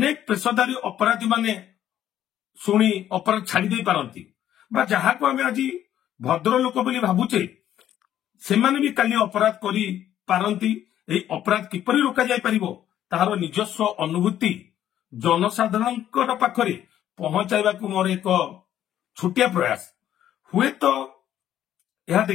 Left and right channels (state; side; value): quieter; right; 11.4 dB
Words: पेशादारी अपराधी माने सुनी अपराध छाड़ी दे पारंती बा जहाँ को आमे आज भद्र लोक बोली भाबुचे से माने भी काली अपराध करी पारंती। एई अपराध किपरि रोका जाय परिबो ताहार निजस्व अनुभूति जनसाधारण पाखरे पहुंचाइबा को मोर एक छोटिया प्रयास हुए तो यह